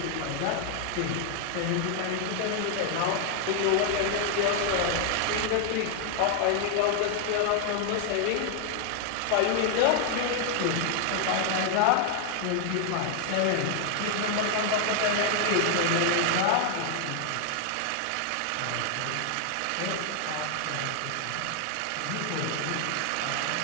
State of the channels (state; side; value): different; both; correlation 0.00